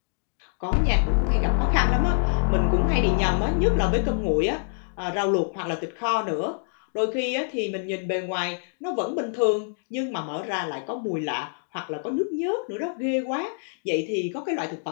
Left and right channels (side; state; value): right; silent; digital silence